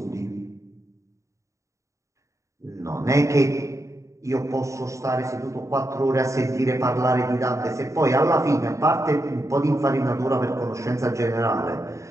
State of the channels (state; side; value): late; left; 0.15 ms